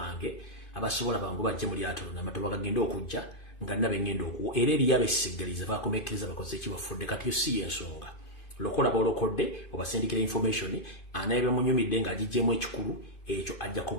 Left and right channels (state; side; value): late; right; 2.5 ms